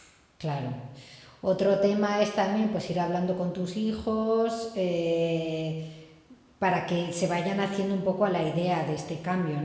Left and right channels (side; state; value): both; identical; correlation 1.00